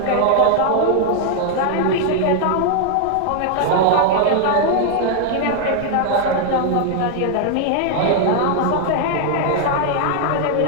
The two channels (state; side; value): different; both; correlation 0.00